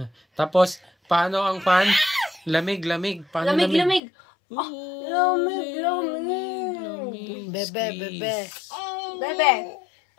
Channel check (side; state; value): right; drops out; at 4.0 s